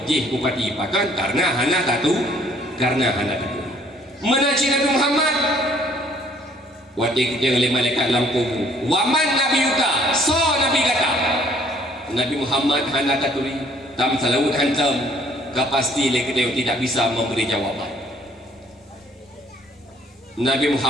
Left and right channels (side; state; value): both; normal; correlation 0.60